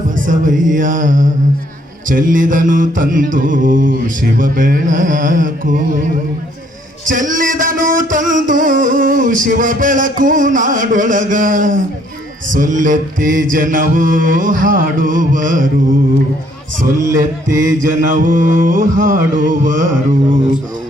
ಬಸವಯ್ಯ, ಚೆಲ್ಲಿದನು ತಂದು ಶಿವ ಬೆಳಕು, ಚೆಲ್ಲಿದನು ತಂದು ಶಿವ ಬೆಳಕು ನಾಡೊಳಗ, ಸೊಲ್ಲೆತ್ತಿ ಜನವು ಹಾಡುವರು, ಸೊಲ್ಲೆತ್ತಿ ಜನವು ಹಾಡುವರು.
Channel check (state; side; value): normal; both; correlation 0.65